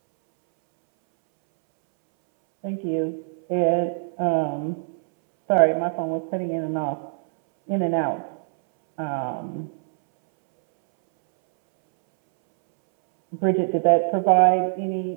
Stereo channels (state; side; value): silent; left; 63 dB below the other